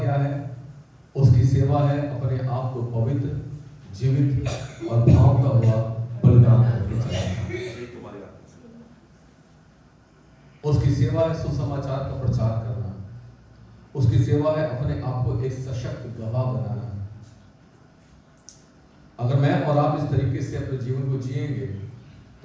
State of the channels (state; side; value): identical; both; correlation 1.00